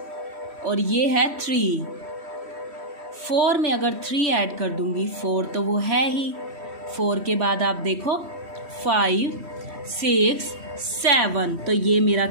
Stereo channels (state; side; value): late; left; 3.1 ms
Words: और ये है 3। 4 में अगर 3 ऐड कर दूंगी, 4 तो वो है ही। 4 के बाद आप देखो 5, 6, 7, तो ये मेरा